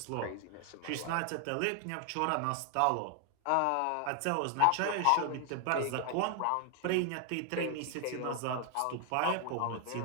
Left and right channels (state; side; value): different; both; correlation 0.00